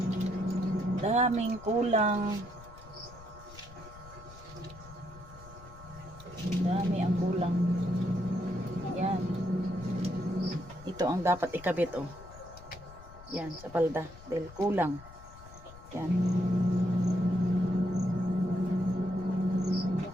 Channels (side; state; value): left; noise; rumble, 18 dB below the sound